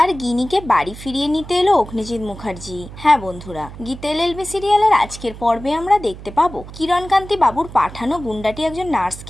গিনিকে বাড়ি ফিরিয়ে নিতে এলো অগ্নিজিৎ মুখার্জি। হ্যাঁ বন্ধুরা, গীতা এলএলবি সিরিয়ালের আজকের পর্বে আমরা দেখতে পাবো কিরণকান্তি বাবুর পাঠানো গুন্ডাটি একজন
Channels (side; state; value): right; noise; hum, 14 dB below the sound